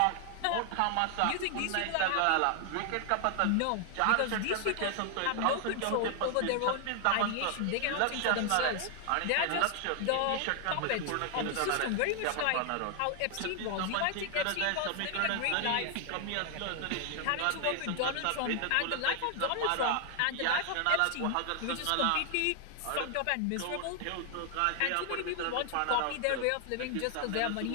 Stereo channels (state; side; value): different; both; correlation 0.00